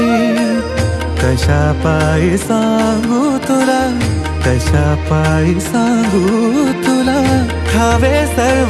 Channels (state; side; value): identical; both; correlation 1.00